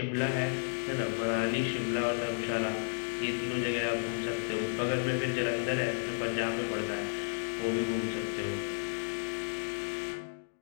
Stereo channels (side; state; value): right; silent; digital silence